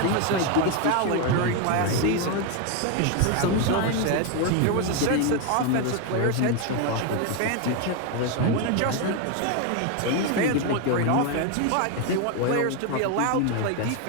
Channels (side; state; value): both; different; correlation 0.01